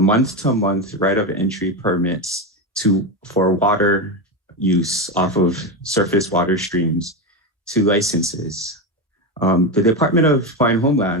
right of entry permits for water use off of surface water streams to licenses. The Department of Hawaiian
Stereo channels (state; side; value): normal; both; correlation 0.14